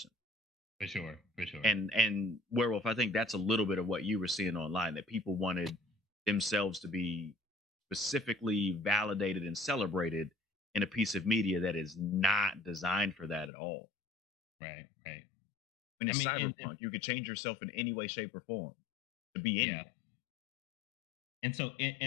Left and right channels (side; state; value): right; drops out; at 13.5 s